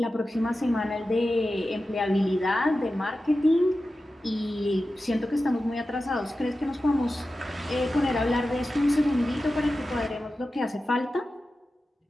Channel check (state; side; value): normal; both; correlation 0.93